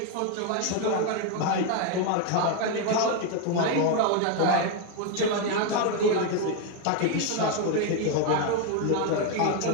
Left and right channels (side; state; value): both; different; correlation 0.01